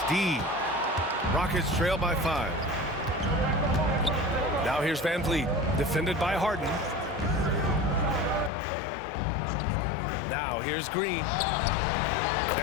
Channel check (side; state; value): right; drops out; at 8.5 s